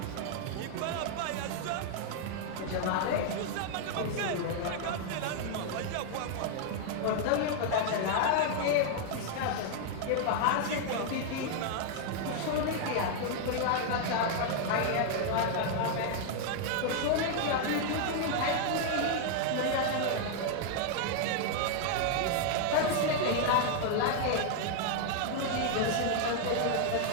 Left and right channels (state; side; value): different; both; correlation 0.00